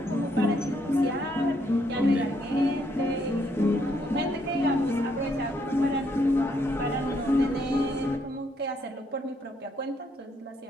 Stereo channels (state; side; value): normal; both; correlation 0.72